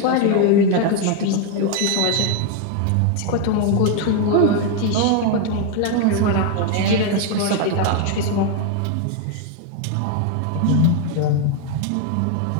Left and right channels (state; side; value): different; both; correlation 0.01